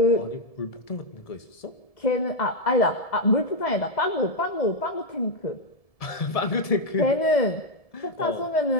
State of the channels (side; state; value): right; late; 1.7 ms